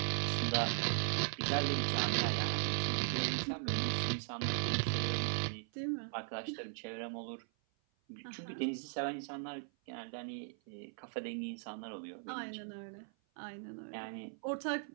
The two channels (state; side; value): silent; left; 52 dB below the other